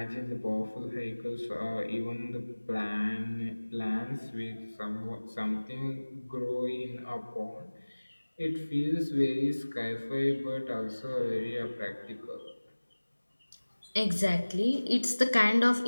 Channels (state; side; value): inverted; both; correlation -1.00